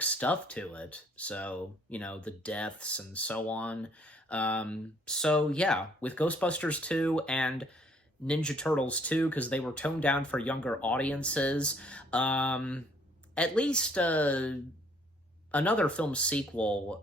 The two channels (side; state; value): both; normal; correlation 0.62